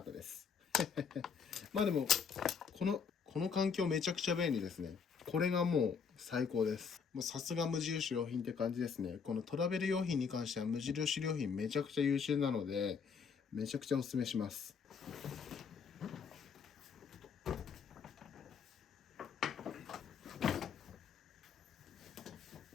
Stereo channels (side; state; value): right; quieter; 6.2 dB